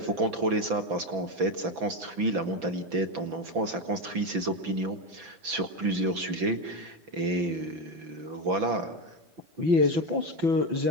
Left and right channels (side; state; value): left; late; 6.0 ms